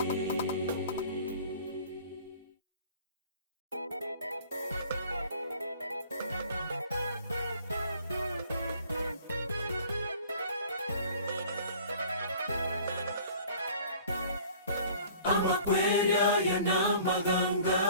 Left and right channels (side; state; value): both; inverted; correlation -0.49